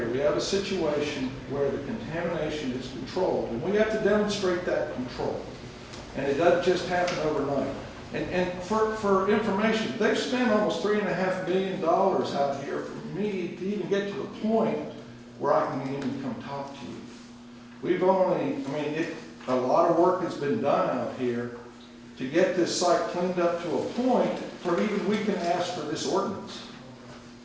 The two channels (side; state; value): both; identical; correlation 1.00